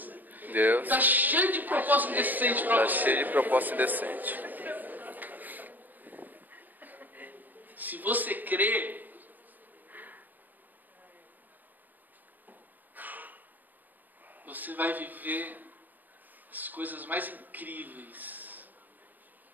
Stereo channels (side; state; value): left; late; 0.087 ms